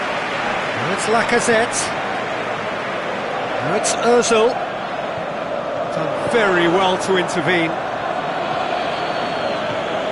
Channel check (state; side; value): identical; both; correlation 1.00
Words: it's Lacazette. Now it's Ozil. Done very well to intervene.